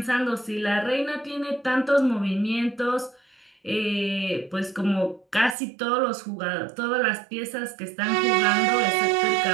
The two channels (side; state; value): left; drops out; at 5.6 s